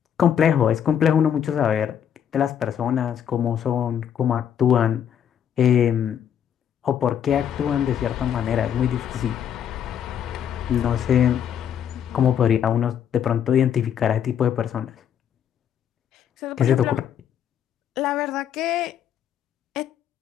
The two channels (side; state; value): right; quieter; 9.1 dB